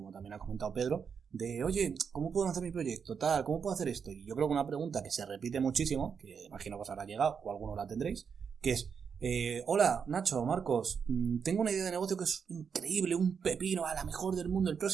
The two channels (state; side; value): quieter; left; 6.5 dB